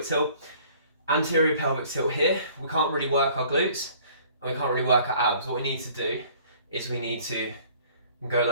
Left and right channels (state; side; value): inverted; both; correlation -0.54